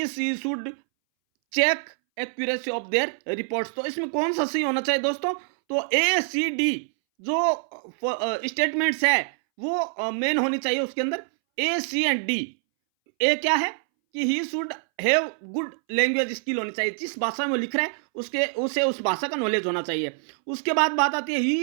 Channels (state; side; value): silent; left; 62 dB below the other